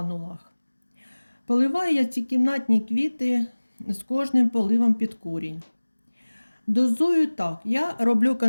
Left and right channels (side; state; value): both; inverted; correlation -1.00